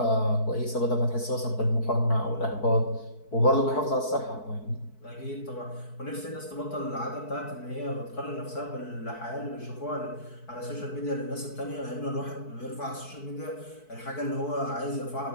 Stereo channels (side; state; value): right; late; 4.6 ms